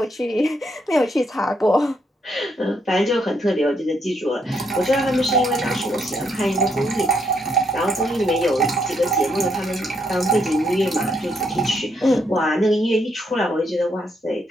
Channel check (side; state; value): both; normal; correlation 0.75